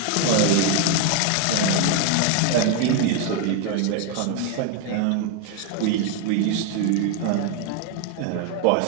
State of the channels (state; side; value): different; both; correlation 0.01